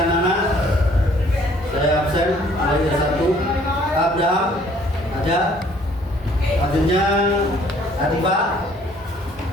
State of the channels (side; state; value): both; normal; correlation 0.59